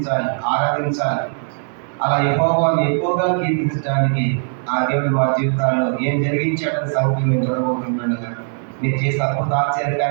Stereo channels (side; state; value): left; silent; 63 dB below the other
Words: ఆరాధించాలి. అలా యెహోవాను ఎక్కువగా కీర్తించడానికి ఆ దేవుడు మా జీవితాల్లో ఏం జరిగించాడని సంగతి మేము చూడబోతుండగా నేను చేసే అద్భుత